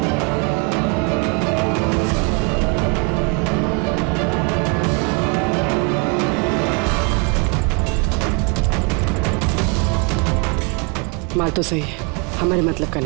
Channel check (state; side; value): quieter; left; 32.3 dB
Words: माल तो सही है, हमारे मतलब का